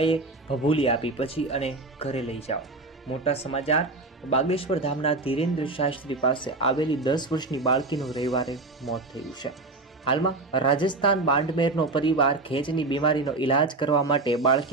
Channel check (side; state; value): left; quieter; 3.3 dB